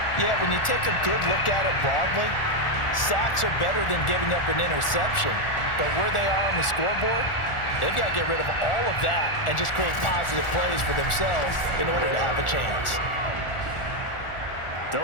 Yeah, when you take a good look at it broadly, sacks are better than giving up an interception. But where they are on the scoreboard, they've got to get rid of all of that and just create positive plays for themselves in order to have a chance.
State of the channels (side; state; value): right; late; 1.4 ms